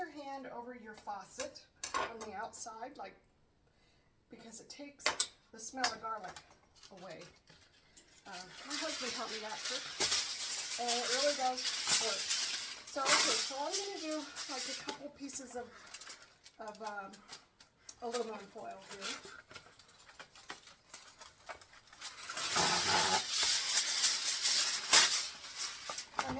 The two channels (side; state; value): both; identical; correlation 1.00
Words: hand over your faucet on the outside, because it takes the smell of garlic away. My husband taught me that trick, and it really does work. So okay, so I'm going to do like a couple pieces of aluminum foil here. And